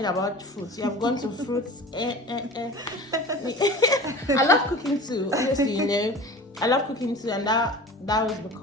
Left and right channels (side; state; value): both; normal; correlation 0.38